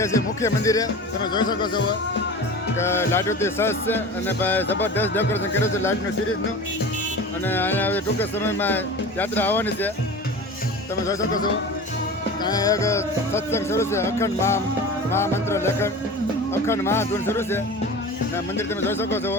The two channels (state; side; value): normal; both; correlation 0.34